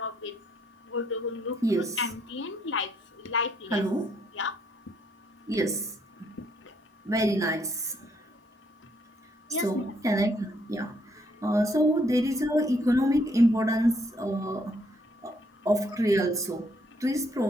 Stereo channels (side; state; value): both; normal; correlation 0.70